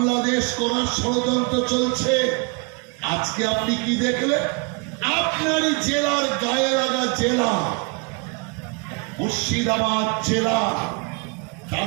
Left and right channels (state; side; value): quieter; left; 32.3 dB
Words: করার ষড়যন্ত্র চলছে। আজকে আপনি কি দেখলেন? আপনারই জেলার গায়ে লাগা জেলা মুর্শিদাবাদ জেলা,